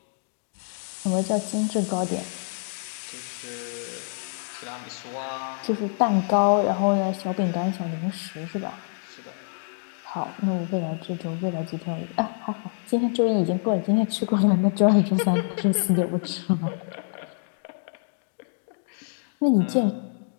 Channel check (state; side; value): silent; right; digital silence